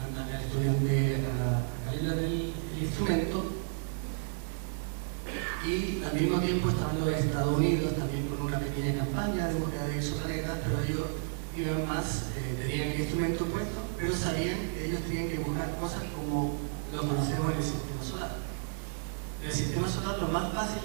al estudiante a calibrar el instrumento, y al mismo tiempo estaban los Estados Unidos también con una pequeña campaña de búsqueda de exoplanetas, pero ellos iban más, tenían el instrumento puesto, pero sabían que ellos tenían que buscar cosas como lo conocemos en el sistema solar. En el sistema solar lo más fácil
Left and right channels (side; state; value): left; silent; digital silence